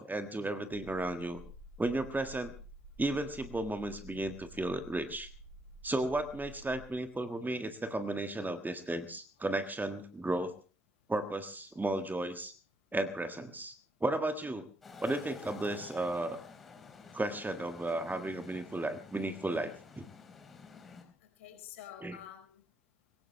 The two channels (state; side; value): normal; both; correlation 0.77